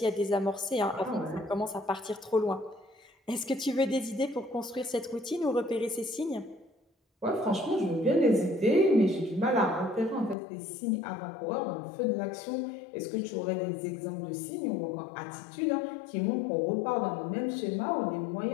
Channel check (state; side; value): drops out; right; at 10.4 s